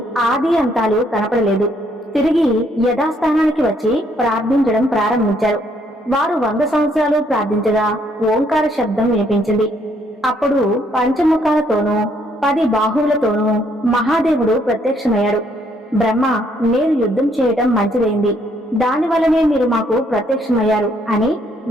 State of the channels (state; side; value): normal; both; correlation 0.69